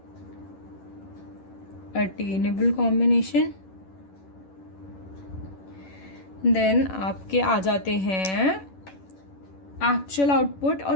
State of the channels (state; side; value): late; right; 11 ms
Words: attainable combination. Then आपके आ जाते हैं एक्चुअल आउटपुट और